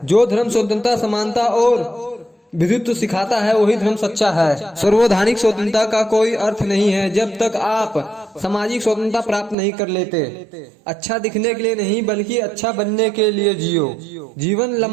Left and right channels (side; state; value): left; drops out; at 9.6 s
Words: जो धर्म स्वतंत्रता, समानता और विधुत्व सिखाता है वही धर्म सच्चा है। सर्वधानिक स्वतंत्रता का कोई अर्थ नहीं है जब तक आप सामाजिक स्वतंत्रता प्राप्त नहीं कर लेते। अच्छा दिखने के लिए नहीं बल्कि अच्छा बनने के लिए जियो। जीवन